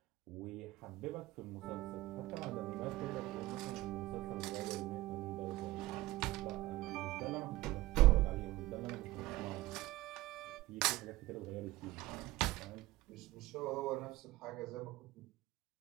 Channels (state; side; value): quieter; left; 18.4 dB